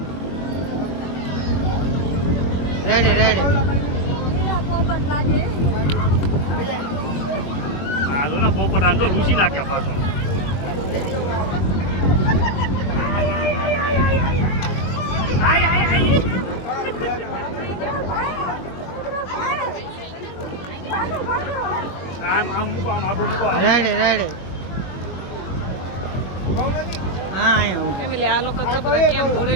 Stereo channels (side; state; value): right; late; 21 ms